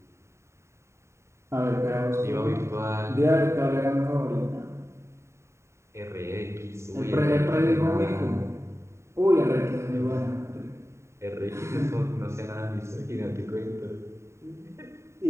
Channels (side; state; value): left; late; 0.14 ms